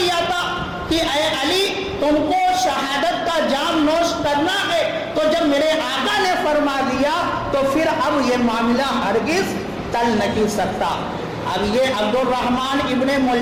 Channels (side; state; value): both; identical; correlation 1.00